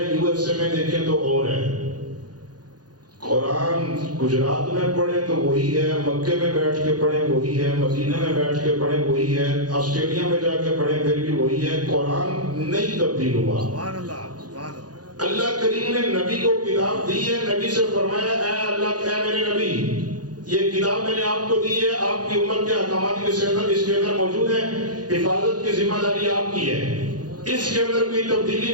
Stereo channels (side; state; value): left; late; 0.69 ms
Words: یو ایس اے میں دیکھیں تو اور ہے۔ قرآن گجرات میں پڑھیں تو وہی ہے، مکے میں بیٹھ کے پڑھیں وہی ہے، مدینہ میں بیٹھ کے پڑھیں وہی ہے، آسٹریلیا میں جا کے پڑھیں پھر بھی وہی ہے، قرآن نہیں تبدیل ہوا۔ سبحان اللہ، سبحان اللہ۔ اللہ کریم نے نبی کو کتاب دی ہے، نبی سے فرمایا اے اللہ، اے میرے نبی، یہ کتاب میں نے آپ کو دی ہے، آپ کی امت کے احکامات اس کے اندر موجود ہے، حفاظت کی ذمہ داری آپ کی ہے، اس کے اندر کوئی تبدیلی